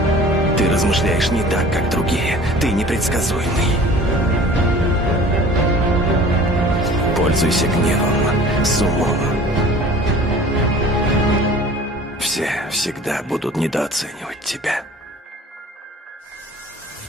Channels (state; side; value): normal; both; correlation 0.46